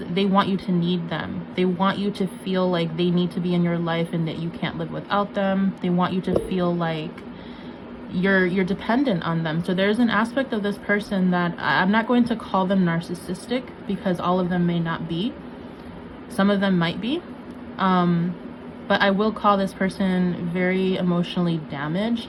they want you to need them. They want you to feel like they need to be in your life and that you can't live without them. They want you to feel like you're dependent on them. So there's an aspect of this person that I'm not going to call them narcissistic, because all of them may not be. Some of them might be, But I will call this person very emotionally damaged.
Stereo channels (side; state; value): both; identical; correlation 1.00